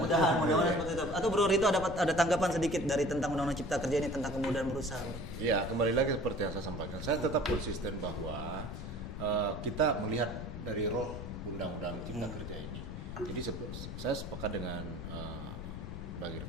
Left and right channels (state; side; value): noise; left; rumble, 8 dB below the sound